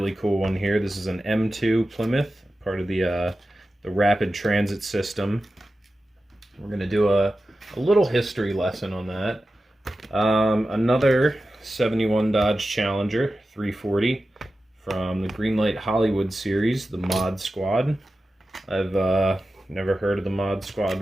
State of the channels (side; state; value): both; normal; correlation 0.93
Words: cool one here. This is an M2 Plymouth, part of the rapid transit system. We're going to do a little history lesson on that. Another 71 Dodge Challenger 340 from the Greenlight Hollywood series, the Mod Squad. I've never heard of the Mod Squad